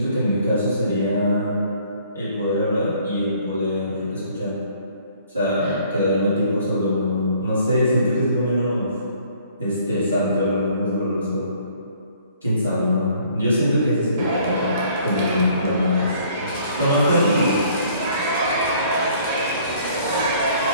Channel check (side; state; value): both; inverted; correlation -0.59